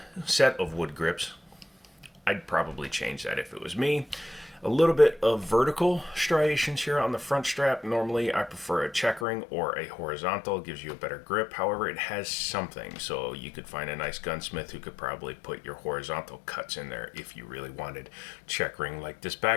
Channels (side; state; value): right; drops out; at 9.2 s